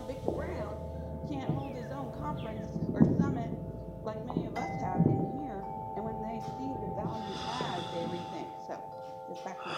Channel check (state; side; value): identical; both; correlation 1.00